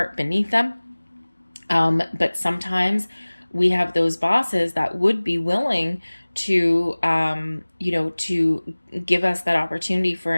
beneath them. But sometimes we have those bosses that would be willing to, to give us that opportunity for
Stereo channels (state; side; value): inverted; both; correlation -1.00